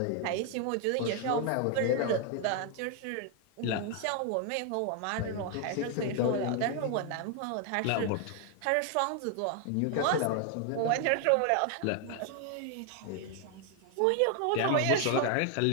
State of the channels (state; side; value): different; both; correlation 0.00